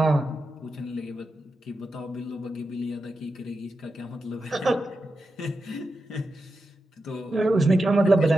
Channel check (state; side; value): normal; both; correlation 0.89